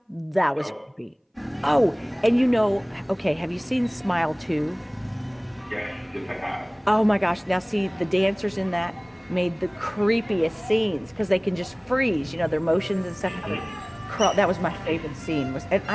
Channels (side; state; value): both; identical; correlation 1.00